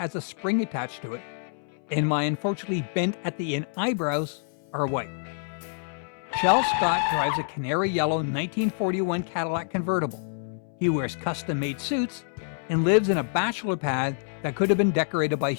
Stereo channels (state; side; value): silent; right; 60 dB below the other